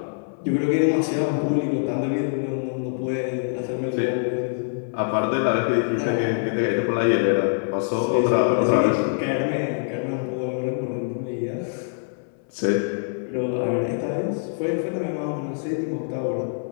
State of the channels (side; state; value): right; silent; 62 dB below the other